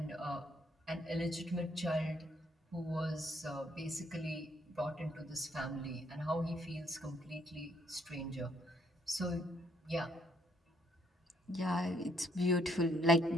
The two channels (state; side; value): normal; both; correlation 0.70